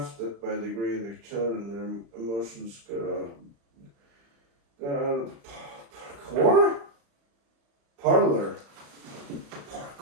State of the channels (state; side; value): late; left; 35 ms